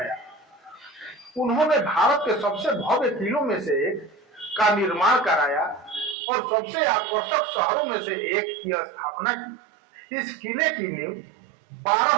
उन्होंने भारत के सबसे भव्य किलों में से एक का निर्माण कराया और सबसे आकर्षक शहरों में से एक की स्थापना की। इस किले की नींव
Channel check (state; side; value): drops out; left; at 6.2 s